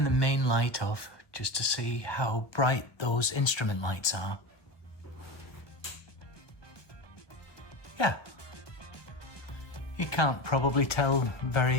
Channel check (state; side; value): late; right; 1.1 ms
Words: the main light off just to see how bright those instrument lights are. Yeah, you can't probably tell